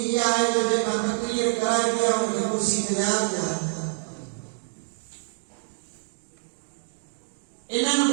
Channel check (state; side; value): silent; left; digital silence